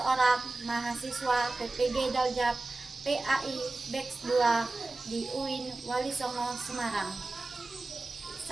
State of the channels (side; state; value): left; quieter; 3.2 dB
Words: mahasiswa PPG Daljab PAI Batch 2 di UIN Wali Songo, Semarang.